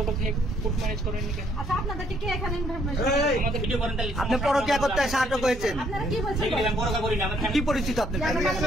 কোর্ট ম্যারেজ করেন কেন? আচ্ছা, আপনাদেরকে কে এখানে আমাদের ভিডিও করেন তাহলে আপনি পরকীয়া করতে আটক হয়েছেন, আপনারা কি বলছেন? আমি পরোয়া করি না, আমার কি পরিচিত আপনার?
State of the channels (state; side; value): normal; both; correlation 0.68